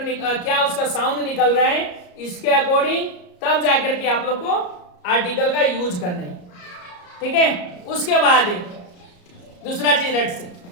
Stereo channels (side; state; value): right; late; 34 ms